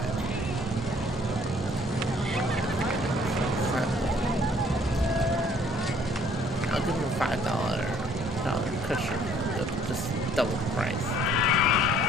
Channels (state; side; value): normal; both; correlation 0.60